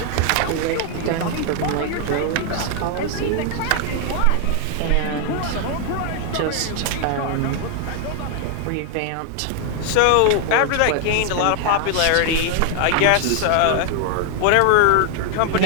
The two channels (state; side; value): different; both; correlation 0.00